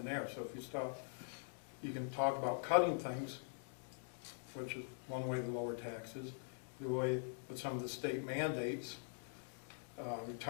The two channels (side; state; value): right; silent; digital silence